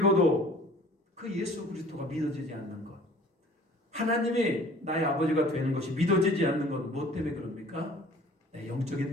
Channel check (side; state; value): both; normal; correlation 0.50